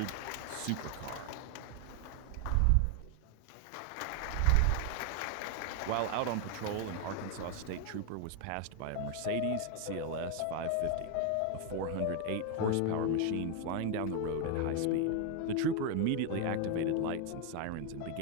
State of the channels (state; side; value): different; both; correlation 0.01